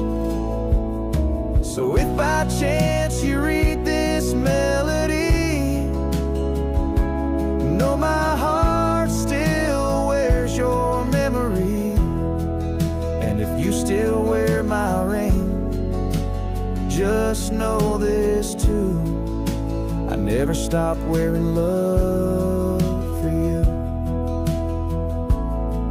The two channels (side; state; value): both; identical; correlation 1.00